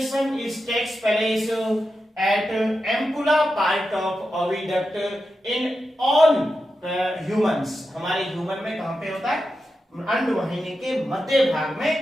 is takes place at ampulla part of oviduct in all humans. हमारे ह्यूमन में कहां पे होता है? अंड वाहिनी के मध्य भाग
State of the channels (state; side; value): normal; both; correlation 0.89